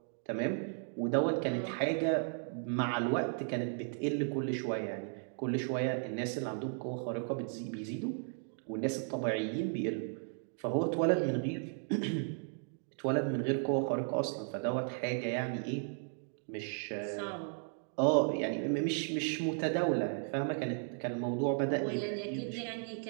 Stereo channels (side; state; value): left; silent; 54 dB below the other